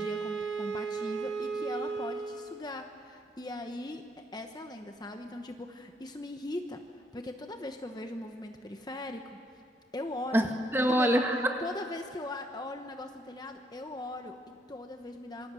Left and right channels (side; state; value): both; normal; correlation 0.72